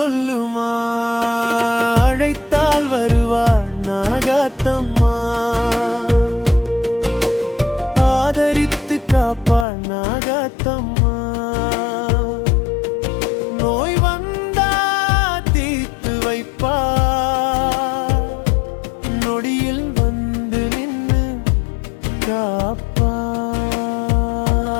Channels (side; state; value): right; drops out; at 9.7 s